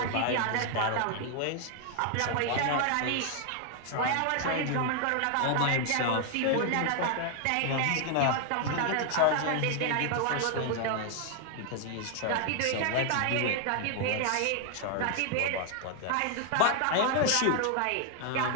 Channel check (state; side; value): different; both; correlation 0.00